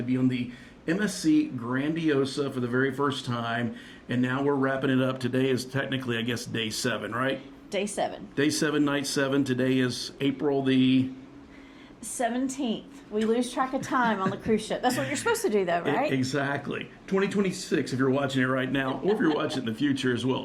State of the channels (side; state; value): both; identical; correlation 1.00